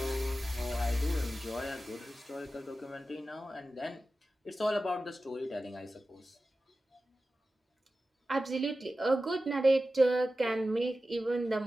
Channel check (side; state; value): both; normal; correlation 0.94